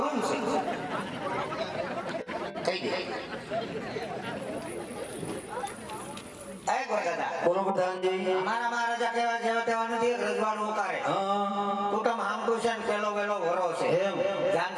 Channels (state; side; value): identical; both; correlation 1.00